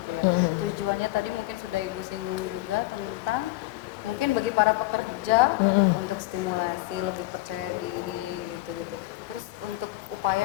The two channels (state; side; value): quieter; right; 18.9 dB